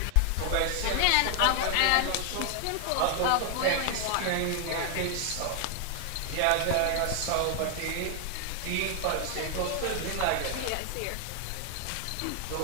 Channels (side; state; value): both; different; correlation 0.00